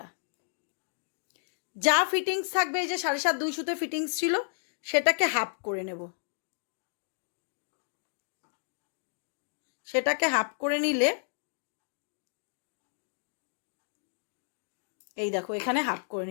যা ফিটিংস থাকবে, এই যে 7.5 2 সুতে ফিটিংস ছিল সেটাকে হাফ করে নেব। সেটাকে হাফ করে নিলে এই দেখো এখানে হাফ করে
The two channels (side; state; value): right; silent; digital silence